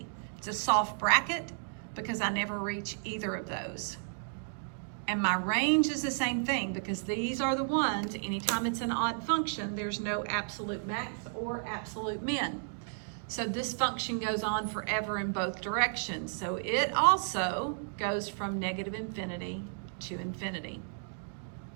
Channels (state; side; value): silent; left; digital silence